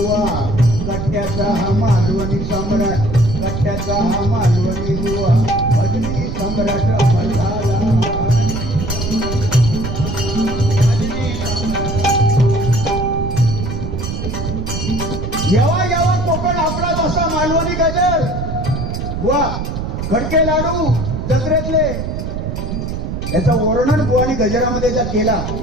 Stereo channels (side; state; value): right; noise; rumble, 4 dB below the sound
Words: कट्ट्याचा हा मालवणी सम्राट, कट्ट्याचा हा मालवणी बुवा भजनी सम्राट अमर झाला. येवा येवा कोकण आपला जसा मालवणी गजर बुवा, खडके लाडू जत्रेतले, याचा वर्णन बुवानी गजरामध्ये केला.